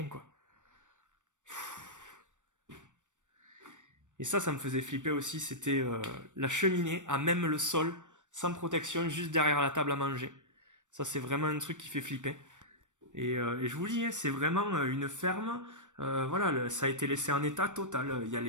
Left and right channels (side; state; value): left; late; 0.85 ms